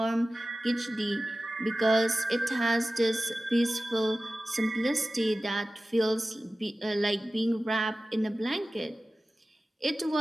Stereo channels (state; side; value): normal; both; correlation 0.96